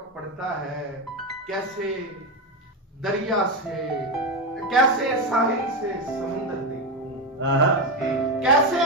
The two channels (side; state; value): both; normal; correlation 0.12